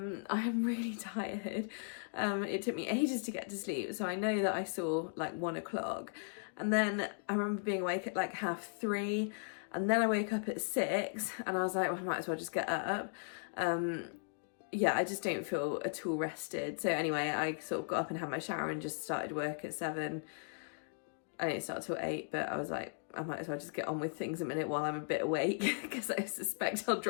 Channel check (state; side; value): silent; right; digital silence